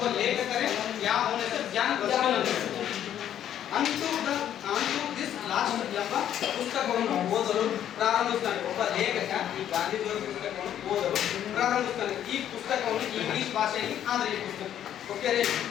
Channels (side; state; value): right; quieter; 10.5 dB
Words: ಲೇಖಕರೇ, ಯಾವ ಅವನ ಹೆಸರು ಜಾನ್ ರಸ್ಕಿನ್ ಅಂತ ಹೇಳಿ. ಅಂತೂ ದಿಸ್ ಲಾಸ್ಟ್ ಎಂಬ ಪುಸ್ತಕವನ್ನು ಓದಲು ಪ್ರಾರಂಭಿಸ್ತಾನೆ. ಒಬ್ಬ ಲೇಖಕ ಈ ಗಾಂಧೀಜಿಯವರ ಪುಸ್ತಕವನ್ನು ಓದಲು ಪ್ರಾರಂಭಿಸ್ತಾನೆ. ಈ ಪುಸ್ತಕವನ್ನು ಇಂಗ್ಲಿಷ್ ಭಾಷೆಯಲ್ಲಿ ಆದ್ರೆ ಈ ಪುಸ್ತಕ ಓಕೆ ರೀ